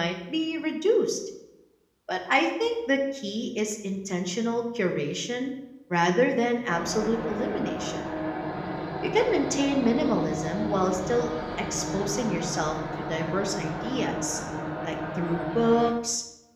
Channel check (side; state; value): both; identical; correlation 1.00